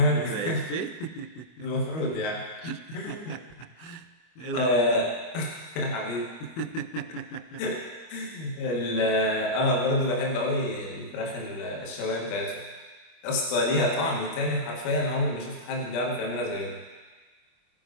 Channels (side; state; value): right; late; 25 ms